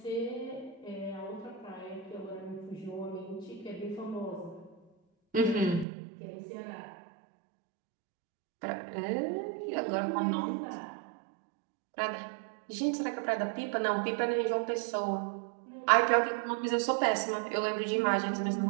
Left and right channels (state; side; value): drops out; left; at 5.9 s